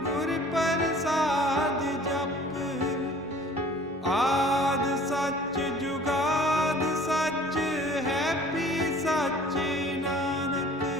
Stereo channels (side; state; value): both; normal; correlation 0.50